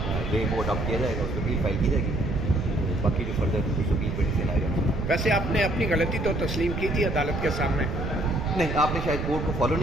وے وہ اڈاپٹ کیا جائے گا، اس پہ اپیل فائل کی جائے گی، باقی جو فردر اس اپیل پہ ڈیسیژن آئے گا۔ ویسے آپ نے اپنی غلطی تو تسلیم کی تھی عدالت کے سامنے؟ نہیں، آپ نے شاید کورٹ کو فالو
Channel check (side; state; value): right; noise; rumble, 4 dB below the sound